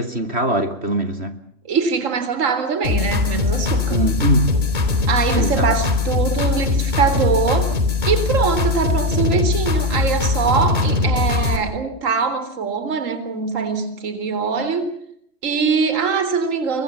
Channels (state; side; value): late; left; 2.2 ms